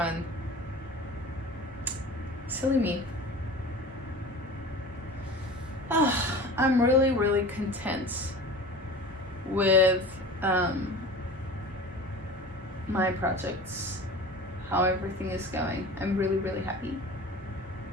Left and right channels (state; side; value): normal; both; correlation 0.37